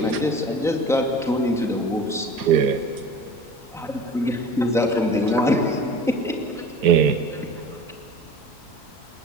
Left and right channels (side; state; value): both; normal; correlation 0.39